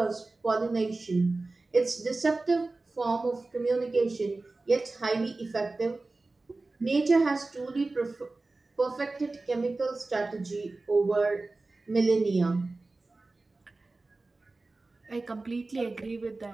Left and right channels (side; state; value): left; quieter; 3.3 dB